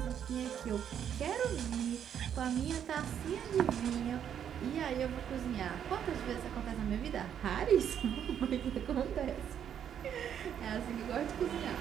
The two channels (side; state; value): left; quieter; 9.0 dB